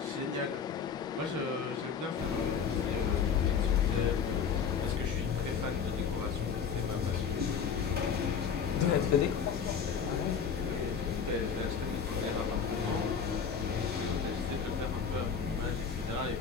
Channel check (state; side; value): quieter; right; 6.6 dB